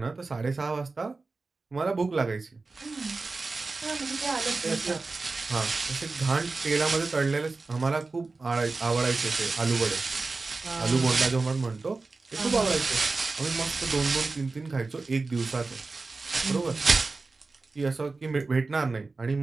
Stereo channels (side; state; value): left; quieter; 3.8 dB